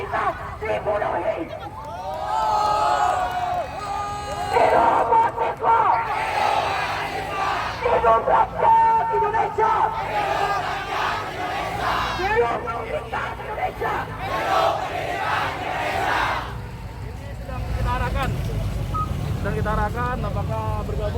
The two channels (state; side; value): identical; both; correlation 1.00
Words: dibodohi. Hidup mahasiswa! Hidup rakyat Indonesia! Hidup pendidikan Indonesia! Sedang kita arahkan apakah